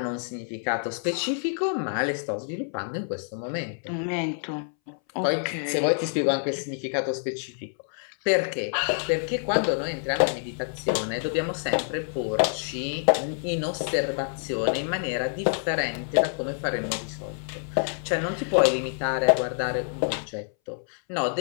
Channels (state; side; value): silent; right; 60 dB below the other